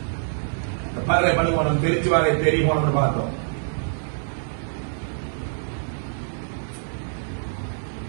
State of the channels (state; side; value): silent; left; 55 dB below the other